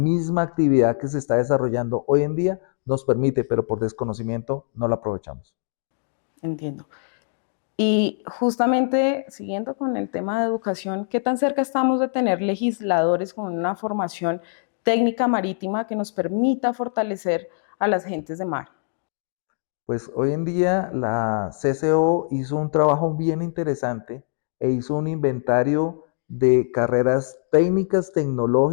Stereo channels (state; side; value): silent; right; digital silence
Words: actividad que se está desarrollando hoy en día nos permite, pero por desconocimiento no la aprovechamos. Entiendo. Y justamente siguiendo con el tema de educación, ¿qué tan cerca estamos de tener legisladores con una formación técnica marítima que nos permita fortalecer a las gentes de mar? Pues hoy en día la CCO hizo un trabajo bien interesante e hizo un inventario de carreras técnicas,